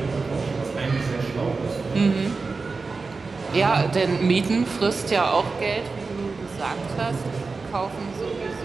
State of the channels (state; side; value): quieter; left; 4.2 dB